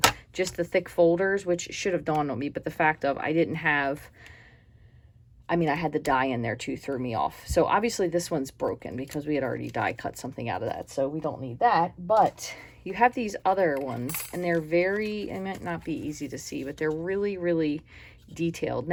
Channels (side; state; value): both; identical; correlation 1.00